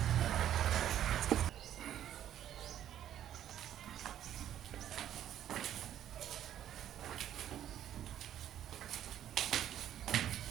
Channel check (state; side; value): quieter; left; 11.1 dB